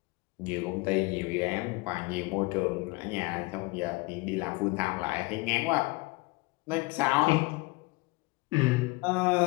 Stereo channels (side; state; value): right; quieter; 25.0 dB